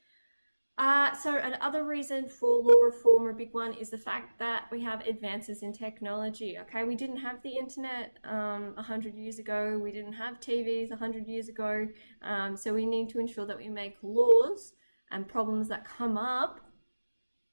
So another reason for law reform, a big one, is the fact that we have advances in technology. Okay, we didn't have the internet 100 years ago. We didn't have TVs 100 years ago. So we need to ensure that we make laws and problems that come up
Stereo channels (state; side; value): inverted; both; correlation -1.00